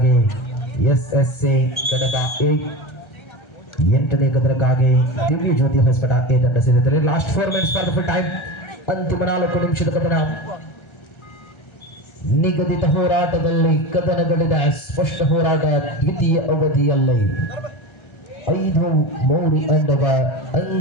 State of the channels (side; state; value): right; late; 1.3 ms